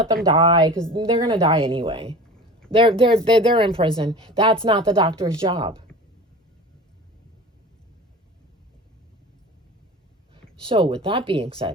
them die because they're going to die anyway. They're in prison. That's not the doctor's job. So with that being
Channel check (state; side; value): normal; both; correlation 0.37